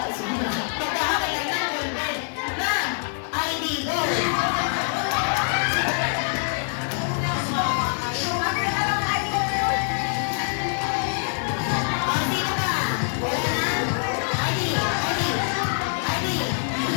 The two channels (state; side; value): silent; right; 62 dB below the other